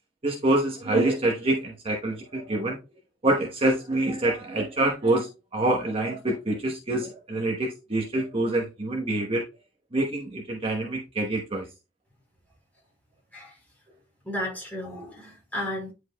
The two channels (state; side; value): normal; both; correlation 0.48